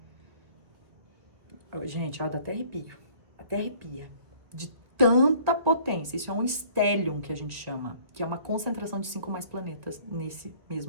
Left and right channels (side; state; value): left; late; 2.1 ms